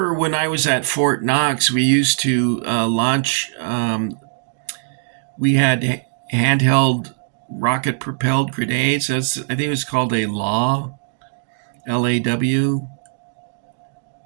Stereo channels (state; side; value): silent; left; digital silence